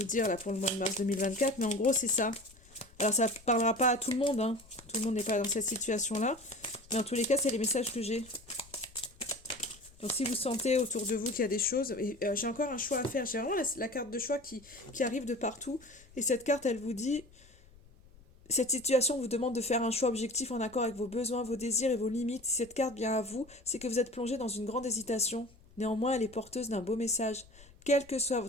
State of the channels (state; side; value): noise; left; rumble, 24 dB below the sound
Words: dire là pour le mois de mars 2024, mais en gros, c'est ça. Alors, ça parlera pas à tout le monde, hein. Tout le monde n'est pas dans cette situation-là, mais en tous les cas, c'est les messages que j'ai. Donc si vous sentez autour de vous qu'il y a des choses, et j'ai encore un choix à faire, j'ai vraiment la carte de choix qui arrive de partout, et cette carte elle vous dit, cette situation vous demande de faire un choix objectif en accord avec vos besoins, vos désirs et vos limites. Si cette carte vient à vous, c'est que vous êtes plongé dans une grande hésitation. Néanmoins, elle est porteuse d'un beau message. Quelle que soit